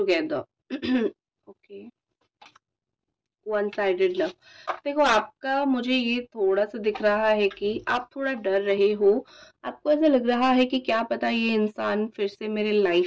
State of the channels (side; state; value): both; identical; correlation 1.00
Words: Okay, one sided love. देखो आपका मुझे ये थोड़ा सा दिख रहा है कि आप थोड़ा डर रहे हो। आपको ऐसा लग रहा है कि क्या पता ये इंसान फिर से मेरे